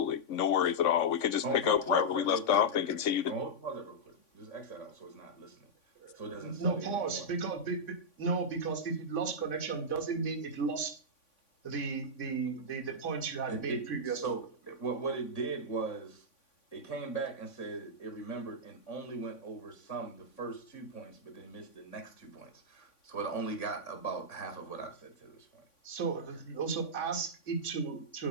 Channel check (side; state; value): right; late; 3.5 ms